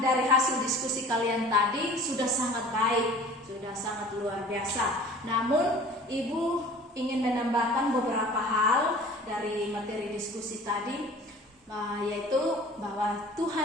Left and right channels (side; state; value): both; normal; correlation 0.45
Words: hasil diskusi kalian tadi sudah sangat baik, sudah sangat luar biasa. Namun, Ibu ingin menambahkan beberapa hal dari materi diskusi tadi, yaitu bahwa